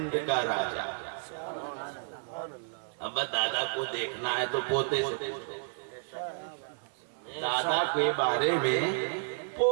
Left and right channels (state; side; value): silent; left; 57 dB below the other